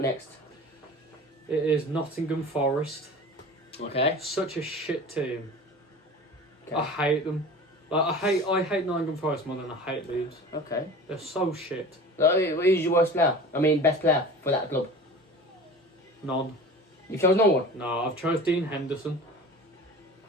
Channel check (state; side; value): normal; both; correlation 0.38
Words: next? It is Nottingham Forest. Okay. Such a shit team. Okay. I hate them. Like I hate Nottingham Forest more than I hate Leeds. Okay. They're so shit. Who's your worst player? I mean, best player for that club? None. You chose no one? No, I've chose Dean Henderson